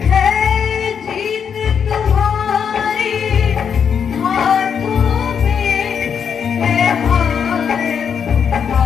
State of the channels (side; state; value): right; quieter; 7.2 dB